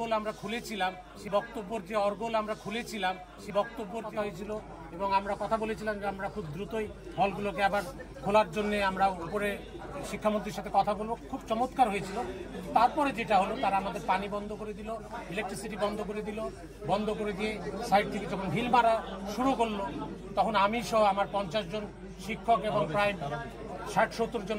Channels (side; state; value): both; identical; correlation 1.00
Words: আমরা খুলেছিলাম সেই বক্তব্য হয়েছিল এবং আমরা কথা বলেছিলাম যে আমরা খুব দ্রুতই হলগুলোকে আবার খোলার জন্য আমরা উপরে শিক্ষামন্ত্রীর সাথে কথা বলবো। খুব চমৎকার হয়েছিল। তারপরে যেটা হলো, তারা আমাদের পানি বন্ধ করে দিল, ইলেকট্রিসিটি বন্ধ করে দিয়ে সাইড থেকে যখন ঢিল মারা শুরু করলো, তখন আমি সহ আমার 50 জন শিক্ষক এবং প্রায় 60-70 জন